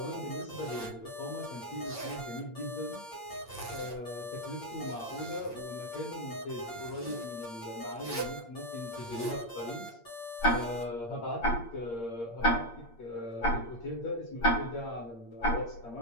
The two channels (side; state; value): right; late; 8.6 ms